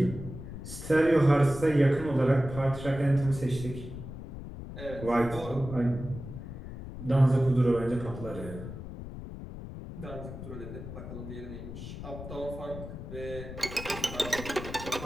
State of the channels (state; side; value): noise; left; rumble, 10 dB below the sound